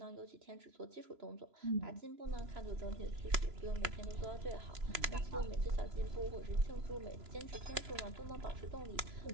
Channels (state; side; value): late; left; 3.0 ms